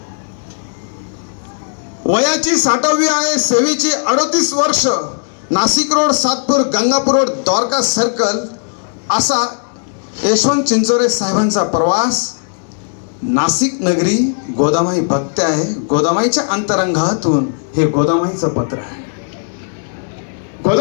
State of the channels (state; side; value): silent; right; digital silence